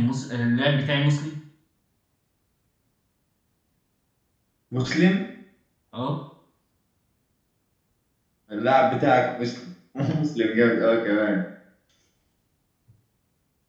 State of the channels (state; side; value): identical; both; correlation 1.00